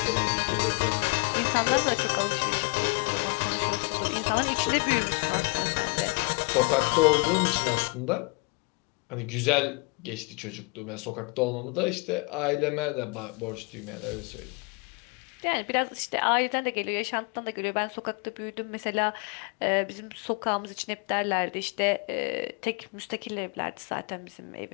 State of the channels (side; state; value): right; quieter; 30.8 dB